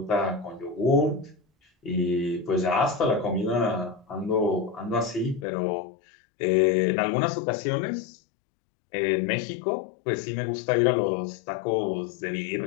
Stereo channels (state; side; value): drops out; right; at 5.5 s